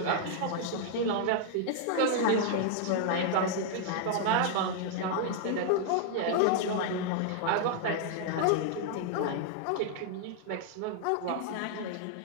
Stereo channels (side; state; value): both; different; correlation 0.00